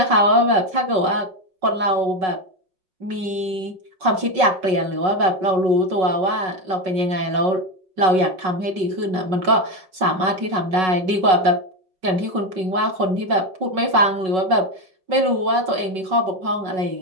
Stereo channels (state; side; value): late; left; 5.4 ms